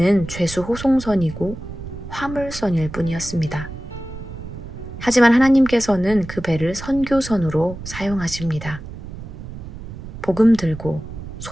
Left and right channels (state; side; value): noise; right; rumble, 11 dB below the sound